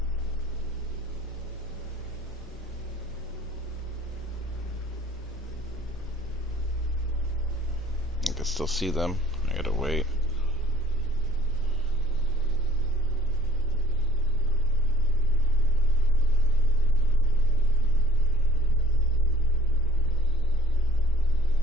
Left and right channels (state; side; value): normal; both; correlation 0.56